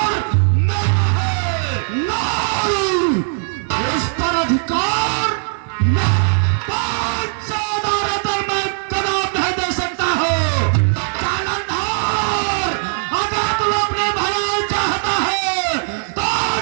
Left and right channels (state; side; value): silent; left; 59 dB below the other